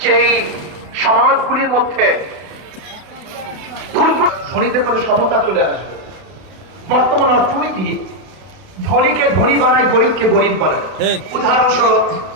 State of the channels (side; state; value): left; late; 32 ms